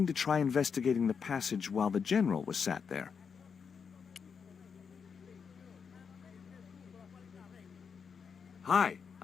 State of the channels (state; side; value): quieter; right; 6.2 dB